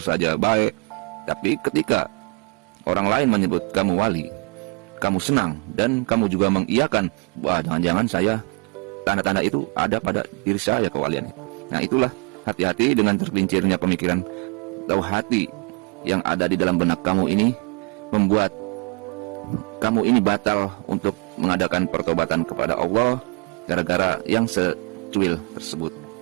baik. Tapi ketika orang lain menyebut kamu wali, kamu senang dan kamu juga mengiyakan, wah jangan-jangan saya, tanda-tanda itu ada pada diri saya kewalian. Nah itulah, hati-hati dengan tergelincirnya pemikiran atau hati yang ada di dalam benak kamu ini, membuat kamu ini batal untuk mengadakan pertobatan kepada Allah gara-gara yang secuil tersebut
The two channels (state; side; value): quieter; left; 32.5 dB